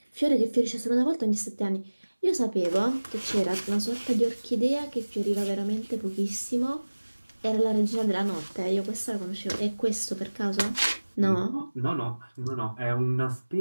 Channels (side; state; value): both; inverted; correlation -1.00